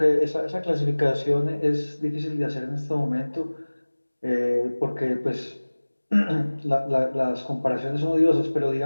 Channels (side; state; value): both; inverted; correlation -1.00